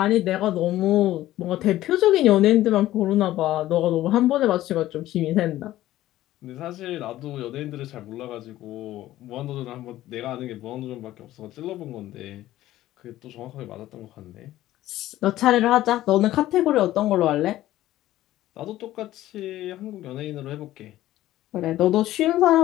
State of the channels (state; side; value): quieter; right; 14.7 dB